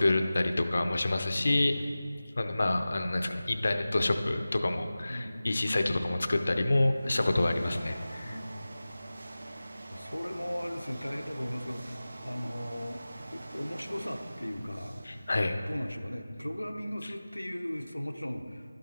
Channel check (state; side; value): inverted; both; correlation -0.97